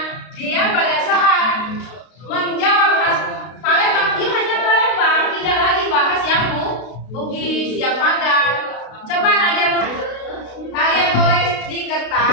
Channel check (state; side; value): late; right; 32 ms